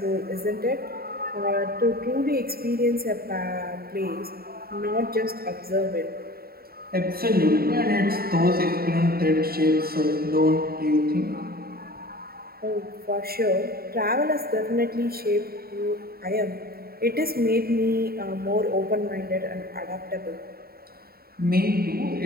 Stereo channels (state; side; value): late; left; 0.44 ms